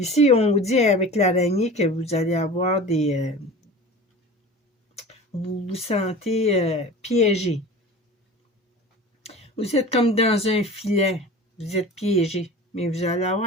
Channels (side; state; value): both; normal; correlation 0.37